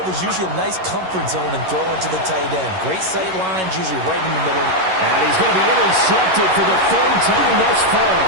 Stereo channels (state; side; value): late; left; 11 ms